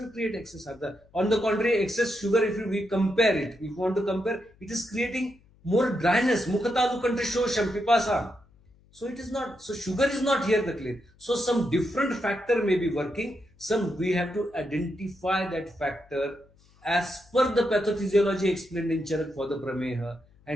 create excess ardrata. On the contrary, excess sugar, if we compare it, if we want to compare, it is creating more dryness. Mukhatalu kantrashosham pipasam. So it is not, so sugar is not here the clay. So some different factor may be working. Some we have to identify that factor as per the pathophysiology explained in Charak for the Prameha,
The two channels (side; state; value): left; noise; hum, 30 dB below the sound